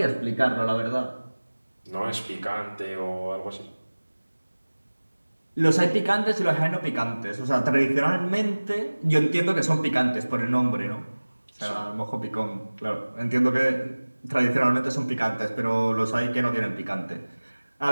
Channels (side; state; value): both; inverted; correlation -1.00